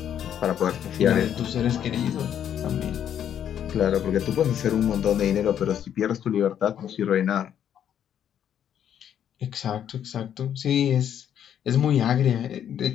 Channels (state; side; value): quieter; right; 9.5 dB